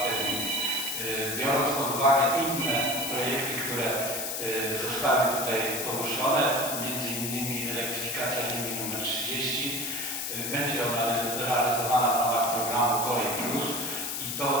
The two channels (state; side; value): noise; left; hiss, 3 dB below the sound